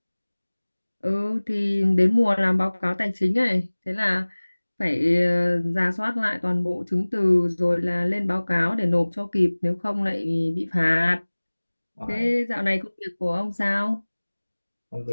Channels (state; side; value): inverted; both; correlation -1.00